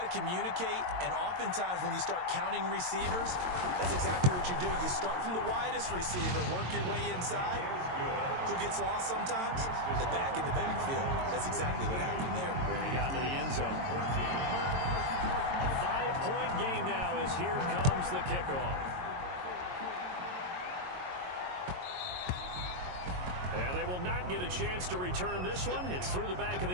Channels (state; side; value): late; left; 22 ms